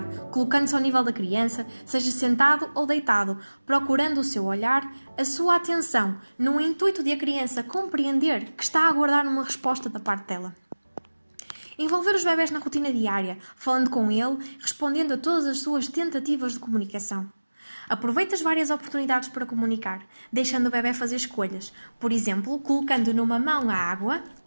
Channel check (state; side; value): inverted; both; correlation -1.00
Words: colocando-se ao nível da criança, seja sentado ou deitado, procurando o seu olhar, a sua atenção, no intuito de a criança compreender que está a aguardar uma resposta da parte dela. Envolver os bebés na rotina diária, falando com ele, respondendo a todas as suas tentativas de comunicação. Aproveite as várias oportunidades para comunicar, deixando o bebé fazer escolhas, por exemplo, colocando numa mão a água